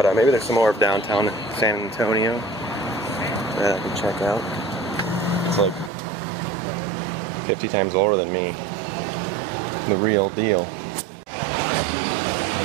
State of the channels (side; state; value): left; drops out; at 5.9 s